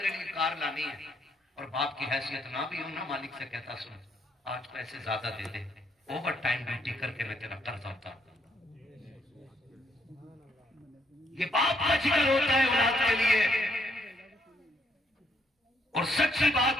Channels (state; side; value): normal; both; correlation 0.72